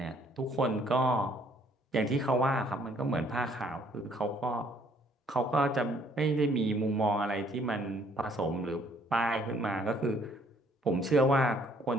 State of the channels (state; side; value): normal; both; correlation 0.63